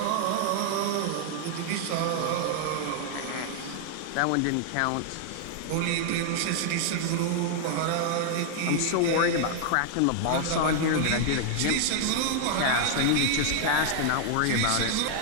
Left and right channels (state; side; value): different; both; correlation 0.00